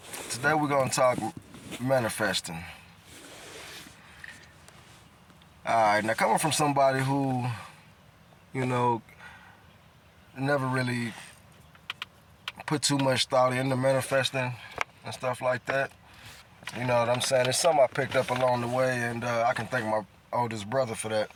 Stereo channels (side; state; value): both; identical; correlation 1.00